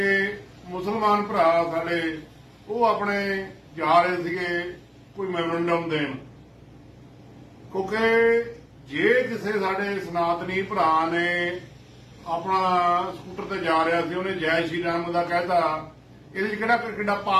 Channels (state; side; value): identical; both; correlation 1.00